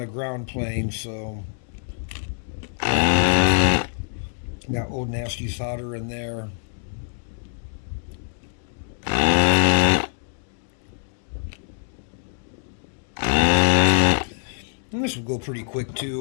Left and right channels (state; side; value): silent; right; digital silence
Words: ground plane, so got old nasty solder in there. And this will go pretty quick